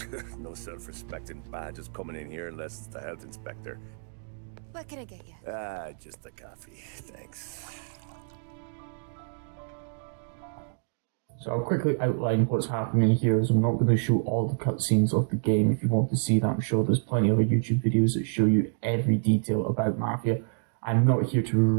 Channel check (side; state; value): left; silent; digital silence